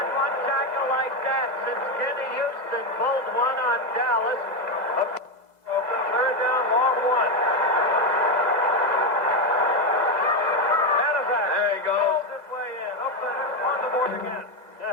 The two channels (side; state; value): left; late; 2.0 ms